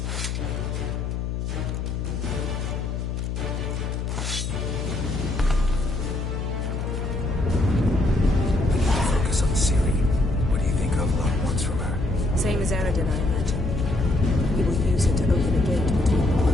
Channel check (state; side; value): noise; left; hum, 3 dB below the sound